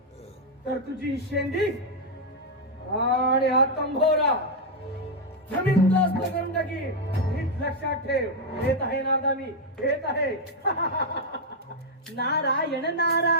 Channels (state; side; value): normal; both; correlation 0.00